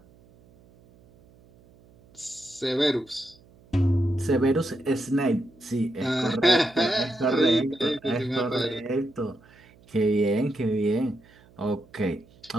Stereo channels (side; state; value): right; noise; hum, 27 dB below the sound